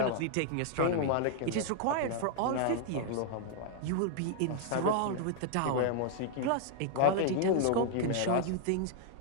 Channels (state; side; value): different; both; correlation -0.01